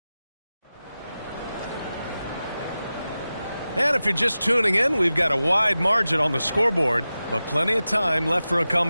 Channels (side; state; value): both; inverted; correlation -0.94